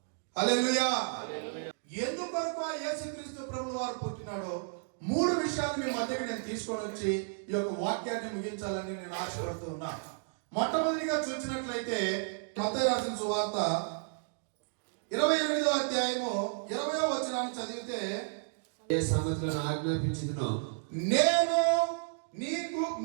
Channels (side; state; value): left; silent; digital silence